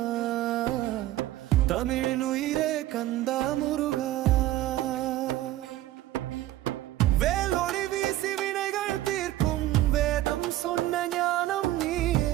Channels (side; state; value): left; quieter; 15.0 dB